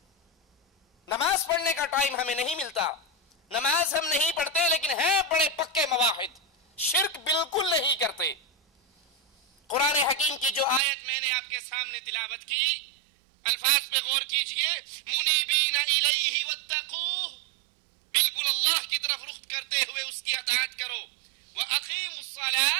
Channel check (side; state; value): left; drops out; at 10.8 s